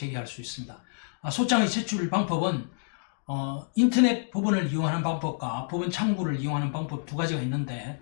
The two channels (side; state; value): right; silent; digital silence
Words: 수 있습니다. 소장의 제출 방법은 인터넷 법원을 이용하는 방법과 법원 창구를 이용하는 방법 두 가지가 있는데